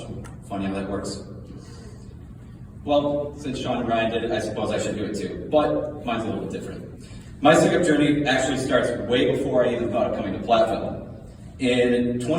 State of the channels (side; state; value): both; identical; correlation 1.00